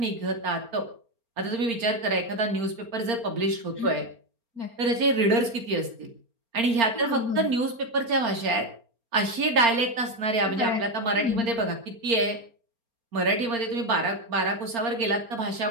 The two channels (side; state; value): left; late; 4.3 ms